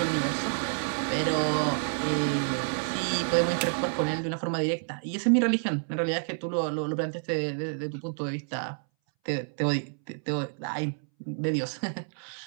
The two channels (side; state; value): left; silent; 59 dB below the other